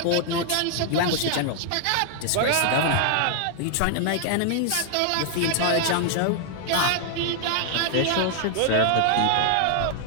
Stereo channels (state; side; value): different; both; correlation 0.00